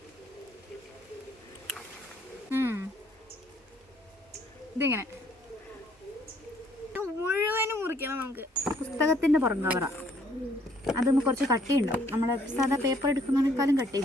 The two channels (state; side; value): normal; both; correlation 0.64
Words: ഇതിങ്ങനെ മുഴുവനും മുറിക്കണം. നമുക്ക് പുസ്തകത്തിൻ്റെ പുറം കവറ, അതൊന്ന് കുറച്ച് കട്ടിയുണ്ടാവും. നമ്മൾ സാധാ പേപ്പർ എടുക്കുന്നതിനേക്കാളും